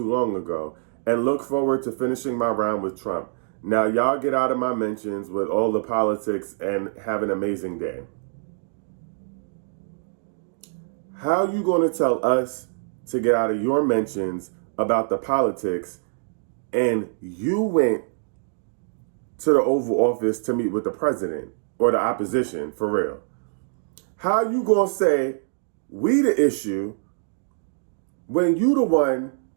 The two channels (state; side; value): silent; left; digital silence